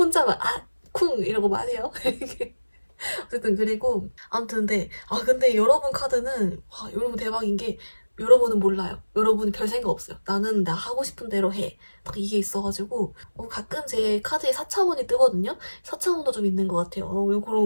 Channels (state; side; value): inverted; both; correlation -1.00